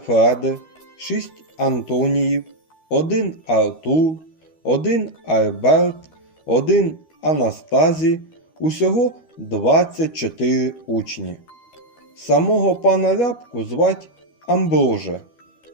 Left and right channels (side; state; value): right; late; 13 ms